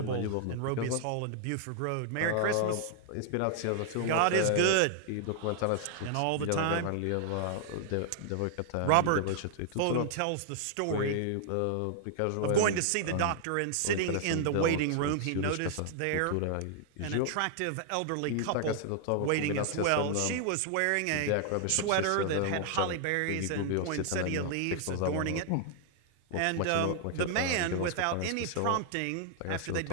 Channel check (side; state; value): both; different; correlation 0.00